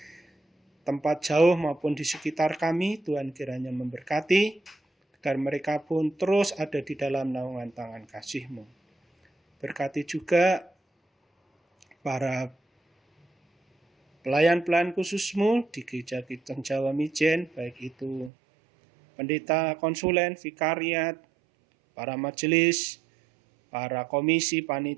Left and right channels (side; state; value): left; drops out; at 18.3 s